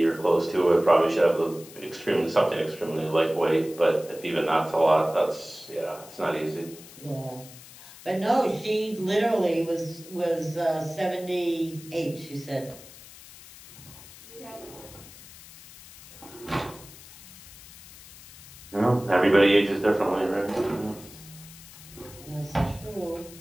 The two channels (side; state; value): left; noise; hiss, 19 dB below the sound